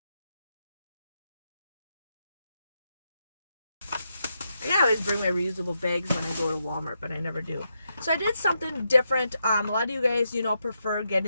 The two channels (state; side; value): inverted; both; correlation -0.83